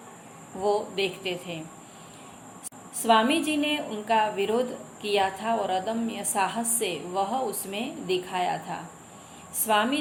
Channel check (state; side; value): identical; both; correlation 1.00